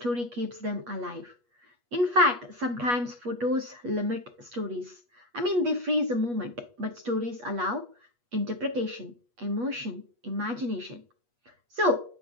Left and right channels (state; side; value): late; left; 8.3 ms